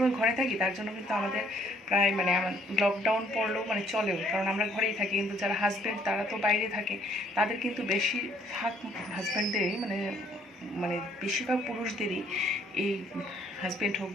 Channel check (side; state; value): both; normal; correlation 0.63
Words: ঘরে থাকি, তার জন্য কিন্তু আমাদের প্রায় মানে আমার লকডাউন পড়লেও মানে চলেও, কারণ আমরা ঘরেই থাকি। কিন্তু যারা হাজব্যান্ড তারা তো বাইরে থাকে, তাদের কিন্তু বেশিরভাগ হাজব্যান্ডেরই মানে মানে বেশিরভাগ পুরুষদেরই এই হাজব্যান্ড হোক,